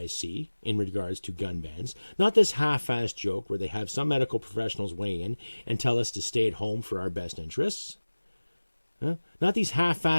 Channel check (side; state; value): both; inverted; correlation -1.00